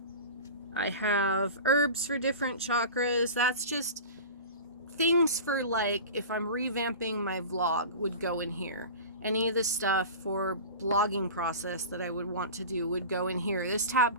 have herbs for different chakras. That's just things for like if I'm revamping my vlog would go in here. Any of the stuff for blogging process that I would want to do would go in here. This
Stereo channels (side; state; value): both; inverted; correlation -0.34